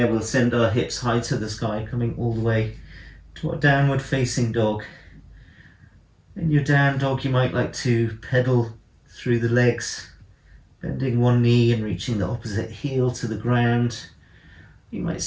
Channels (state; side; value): identical; both; correlation 1.00